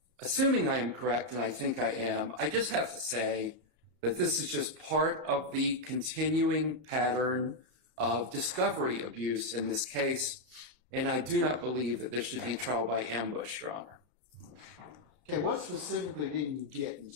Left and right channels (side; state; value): left; late; 32 ms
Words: assuming I am correct, and I think I am, I just have to say that this is just part of the continuing pattern of discovery abuse in this case, and I do not believe that this should be trial by ambush, Your Honor. Okay, what specifically didn't you get,